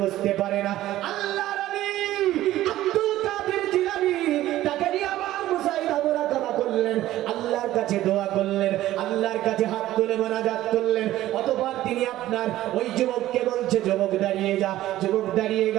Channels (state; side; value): quieter; left; 14.6 dB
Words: বুঝতে পারে না। আল্লাহর ওলি আব্দুল কাদের জিলানী তাকে নিয়ে আবার মুশাহিদা মুরাকাবা করলেন, আল্লাহর কাছে দোয়া করলেন, আল্লাহর কাছে হাত তুলে মোনাজাত করলেন। অতঃপর তিনি আপনার ওই যুবককে বলছে যুবক দাঁড়িয়ে যা। যুবক দাঁড়িয়ে